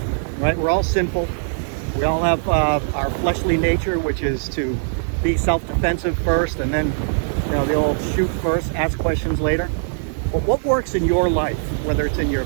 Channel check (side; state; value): left; silent; digital silence